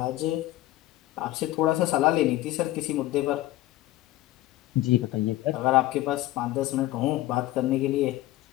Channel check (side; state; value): right; quieter; 16.3 dB